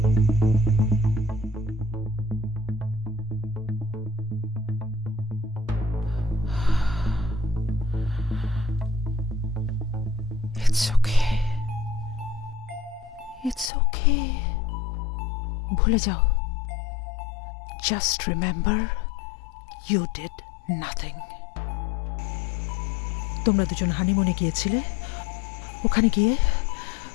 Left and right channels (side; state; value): right; drops out; at 13.7 s